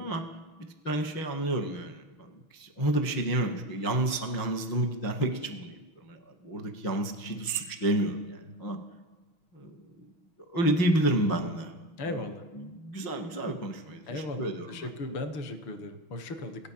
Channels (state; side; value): late; right; 6.2 ms